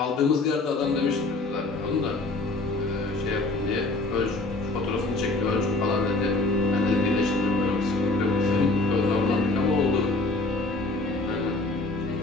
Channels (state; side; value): quieter; right; 3.1 dB